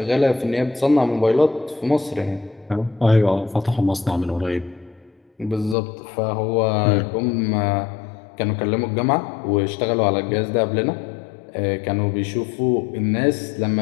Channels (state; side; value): drops out; right; at 5.8 s